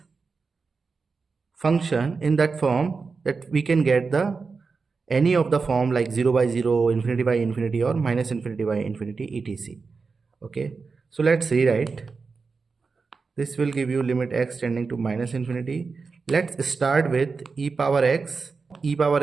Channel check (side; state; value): left; quieter; 4.7 dB